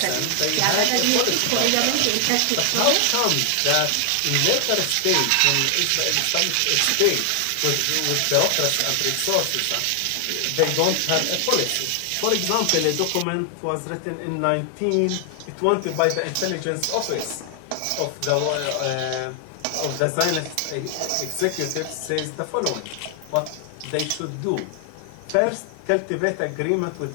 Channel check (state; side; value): different; both; correlation 0.00